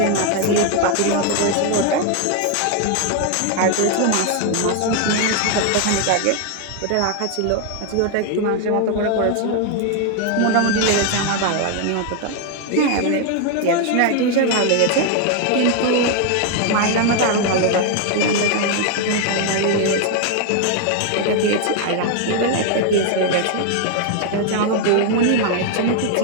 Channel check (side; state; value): both; different; correlation 0.01